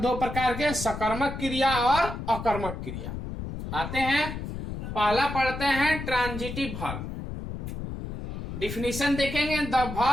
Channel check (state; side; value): noise; left; rumble, 7 dB below the sound